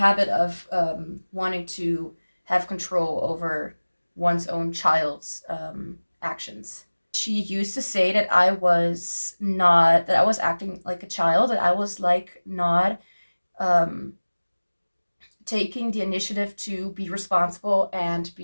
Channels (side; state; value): both; inverted; correlation -1.00